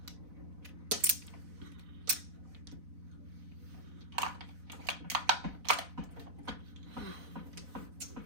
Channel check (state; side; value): late; left; 4.0 ms